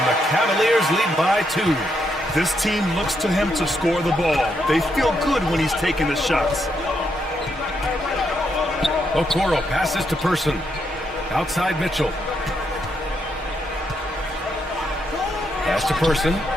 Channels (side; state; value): both; normal; correlation 0.78